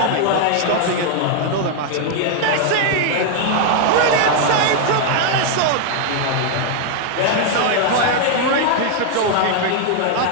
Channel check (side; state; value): both; different; correlation 0.00